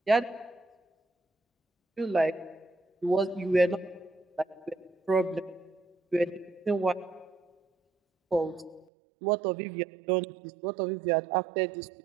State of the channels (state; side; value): drops out; left; at 8.8 s